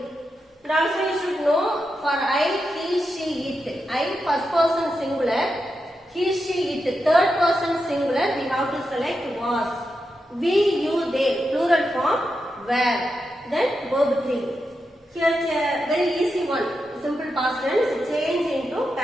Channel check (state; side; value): normal; both; correlation 0.87